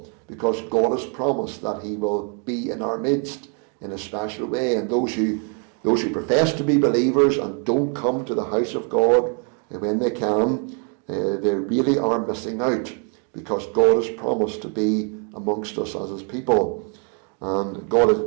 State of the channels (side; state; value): left; quieter; 37.8 dB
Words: because God has promised that he will be in our midst in a special way. And those who profess to be believers and don't come to the house of God when they can, they really are missing out, because God has promised to be amongst us as his people. And God